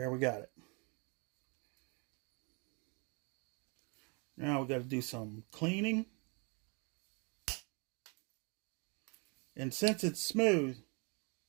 we got it. Now we got to do some cleaning. And since it's smooth,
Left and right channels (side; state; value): left; quieter; 32.8 dB